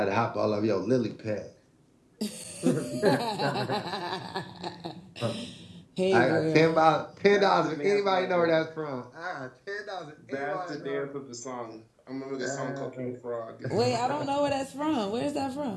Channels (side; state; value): both; identical; correlation 1.00